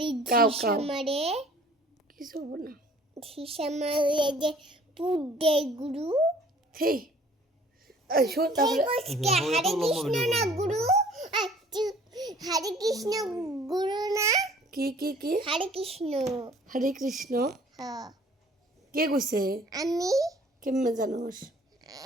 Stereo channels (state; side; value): normal; both; correlation 0.53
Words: কাউ ঝিসা কাউ। মারে। কিছু হবো না। ঝিসা মারে যে পুট দেয় গুরু। হেই শোন তারপরে হরে কৃষ্ণ না গুরু। হরে কৃষ্ণ গুরু না। কি হরে কৃষ্ণ। হরে কৃষ্ণ হ্যাঁ কে কইছে? আমি কেমনে জানোস?